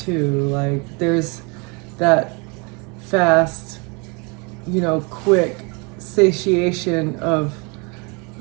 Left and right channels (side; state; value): left; quieter; 31.2 dB